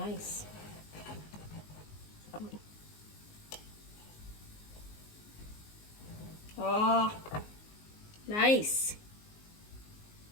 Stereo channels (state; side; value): late; right; 19 ms